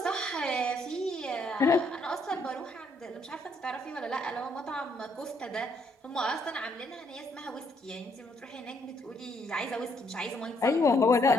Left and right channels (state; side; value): normal; both; correlation 0.70